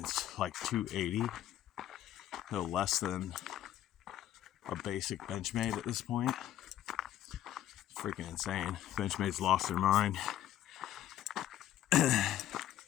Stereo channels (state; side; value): quieter; right; 12.1 dB